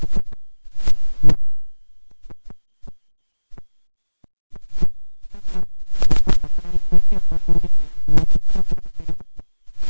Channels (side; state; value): both; inverted; correlation -1.00